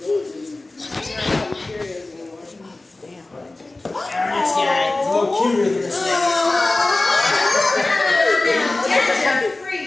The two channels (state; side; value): quieter; right; 3.0 dB